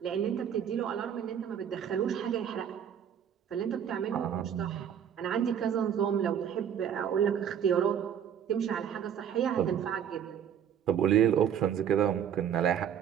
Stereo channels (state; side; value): quieter; left; 8.8 dB